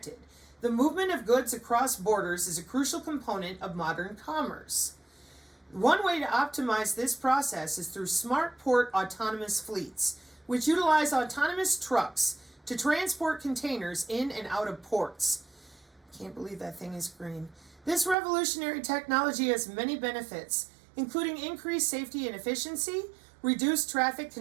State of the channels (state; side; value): drops out; left; at 18.2 s